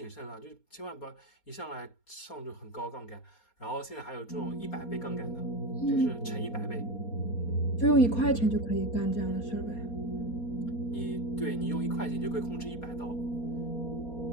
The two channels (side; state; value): right; late; 4.3 ms